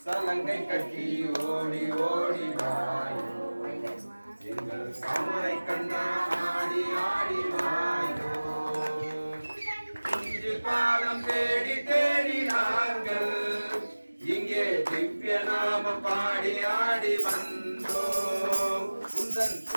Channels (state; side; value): inverted; both; correlation -1.00